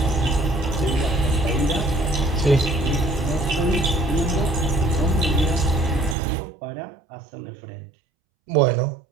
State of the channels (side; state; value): left; drops out; at 6.2 s